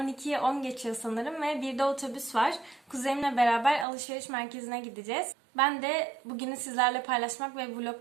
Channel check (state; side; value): drops out; left; at 3.9 s